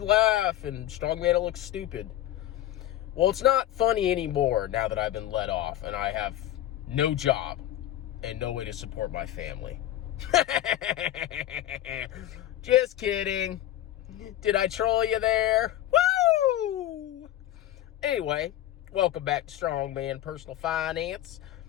laugh and Strongman will look stupid. Well, it's not funny anymore now that I've been let off and I have no job and no way to support my family. Just kidding. Did I troll you there? Woo! Anyway, welcome back to Strongman Personal Finance.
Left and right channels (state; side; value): quieter; right; 13.0 dB